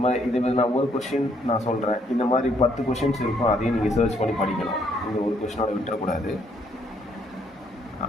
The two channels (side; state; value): both; normal; correlation 0.69